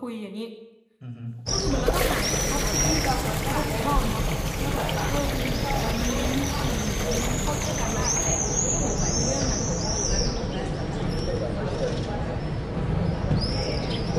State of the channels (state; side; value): identical; both; correlation 1.00